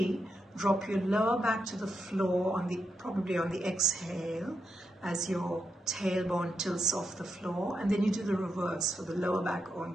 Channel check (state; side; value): normal; both; correlation 0.84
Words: drop your lower back to the floor, probably on the exhale, as your tailbone tilts off the floor, and then you do the reverse for the lower back